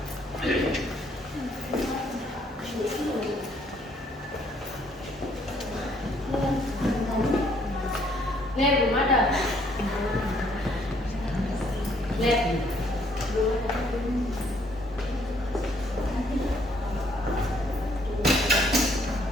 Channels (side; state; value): both; normal; correlation 0.66